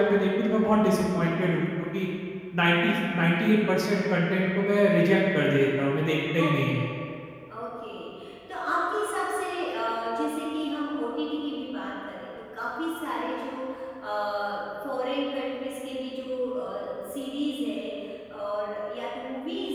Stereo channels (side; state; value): both; identical; correlation 1.00